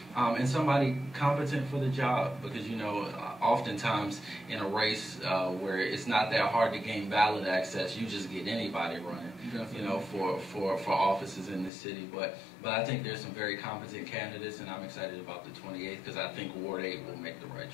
and somebody competent for the job, because oftentimes in a race where it's not that hard to gain ballot access, you just get anybody running. For offices in this city, but I think there's some very competent candidates, and I'm excited about the 28th because I think Ward 8 will make the right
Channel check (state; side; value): drops out; right; at 11.7 s